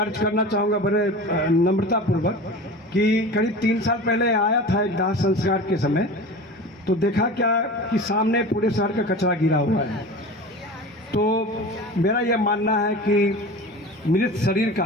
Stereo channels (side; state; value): both; normal; correlation 0.34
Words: करना चाहूँगा बड़े नम्रतापूर्वक कि करीब 3 साल पहले आया था एक दाह संस्कार के समय, तो देखा क्या कि सामने पूरे शहर का कचरा गिरा हुआ है। तो मेरा यह मानना है कि मृत शरीर